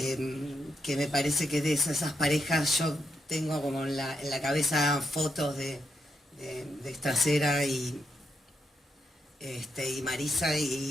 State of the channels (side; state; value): both; normal; correlation 0.82